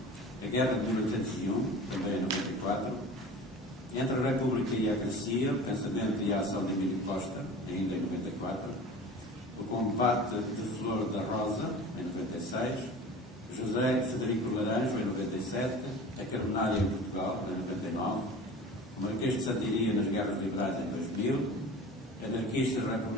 A Guerra de 1801, também em 94, Entre a República e a Crescia, O Pensamento e a Ação de Emílio Costa, ainda em 94, O Combate de Flor da Rosa, em 96, José Federico Laranjo, em 97, A Carbonária em Portugal, em 99, O Marquês de Santiria nas Guerras Liberais, em 2000, Anarquistas,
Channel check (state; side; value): normal; both; correlation 0.38